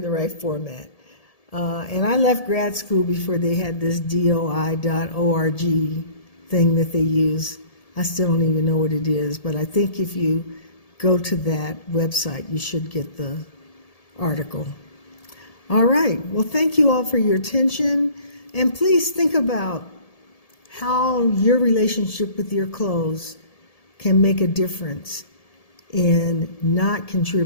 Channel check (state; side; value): late; right; 1.7 ms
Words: the right format. And I left grad school before they had this DOI.org thing that they use. I still don't even know what it is, but I think if you go to that website, you should get the article. All right. Well, thank you all for your attention. And please think about how your relationship with your clothes can make a difference in not